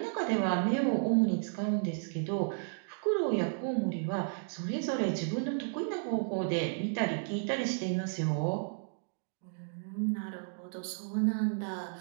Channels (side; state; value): left; silent; digital silence